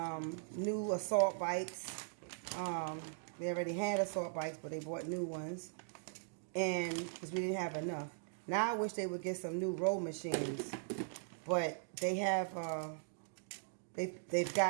new assault bikes. They already had assault bikes, but they bought new ones, and because we didn't have enough. Now I wish they would get some new row machines, but they have. They've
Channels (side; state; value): left; silent; digital silence